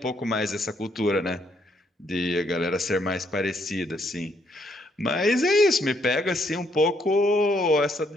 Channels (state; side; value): normal; both; correlation 0.72